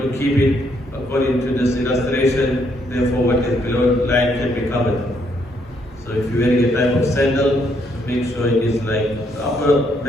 to keep it according to this illustration, therefore what is below the line can be covered. So if you're wearing a type of sandal, make sure it is like the upper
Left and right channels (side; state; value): both; normal; correlation 0.72